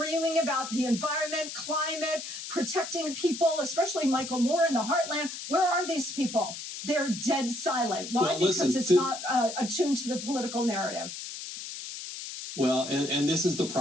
about the environment, climate, protecting people, especially Michael Moore in the heartland. Where are these people? They're dead silent. Why? Well, because it's not attuned to the political narrative. Well, and this is the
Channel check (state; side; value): noise; left; hiss, 9 dB below the sound